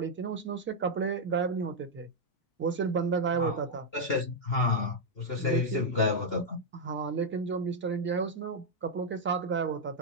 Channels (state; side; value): late; right; 2.8 ms